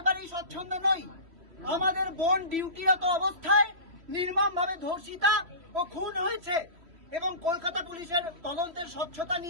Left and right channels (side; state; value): left; late; 3.1 ms